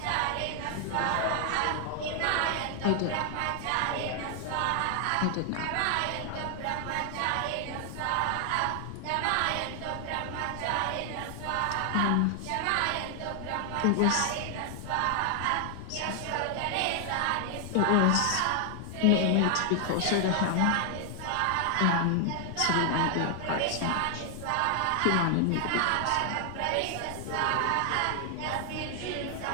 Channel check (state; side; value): different; both; correlation 0.00